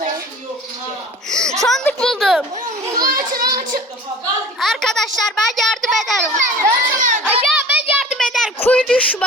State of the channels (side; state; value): both; normal; correlation 0.42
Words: Sandık buldum. Açın. Arkadaşlar ben yardım ederim. Ya ben yardım ederim. Kuyu